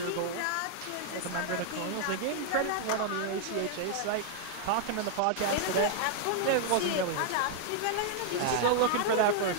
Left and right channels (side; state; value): both; different; correlation -0.01